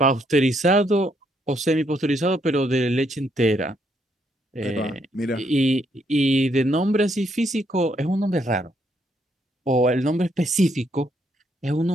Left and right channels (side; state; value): both; normal; correlation 0.74